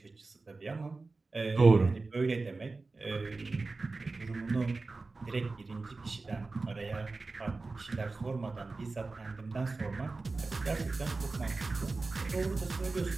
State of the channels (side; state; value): left; quieter; 3.7 dB